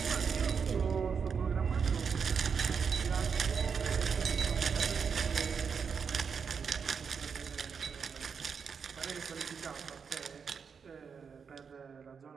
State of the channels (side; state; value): left; quieter; 6.2 dB